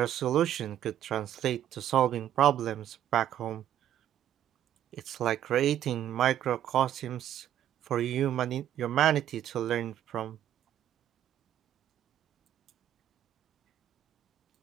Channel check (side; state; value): left; quieter; 11.2 dB